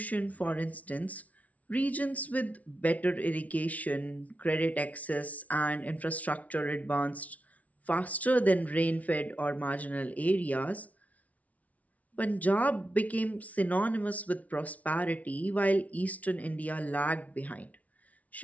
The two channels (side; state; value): right; late; 0.069 ms